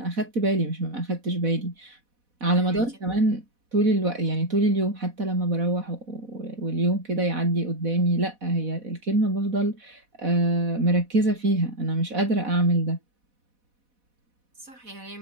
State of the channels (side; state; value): left; late; 4.1 ms